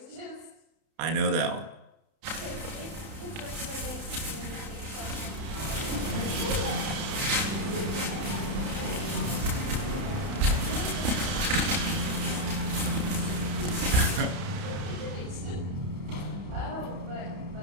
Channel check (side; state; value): left; late; 31 ms